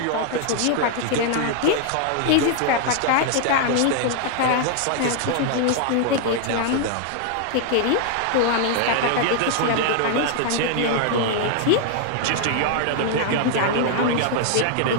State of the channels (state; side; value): different; both; correlation 0.00